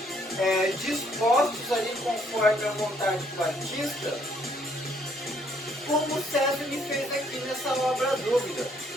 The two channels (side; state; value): both; normal; correlation 0.67